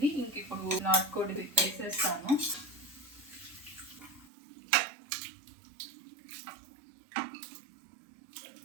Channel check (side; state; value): left; drops out; at 4.3 s